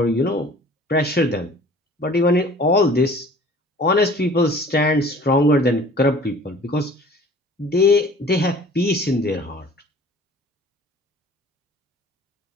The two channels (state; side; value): normal; both; correlation 0.48